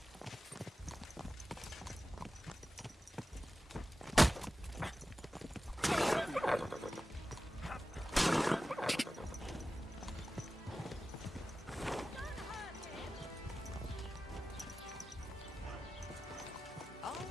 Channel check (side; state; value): both; normal; correlation 0.94